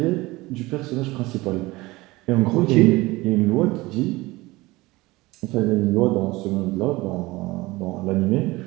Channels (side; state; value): left; quieter; 20.7 dB